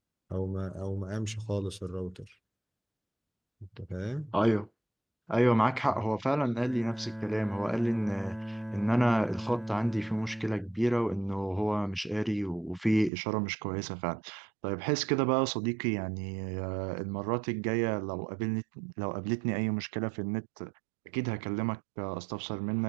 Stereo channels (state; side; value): drops out; left; at 13.1 s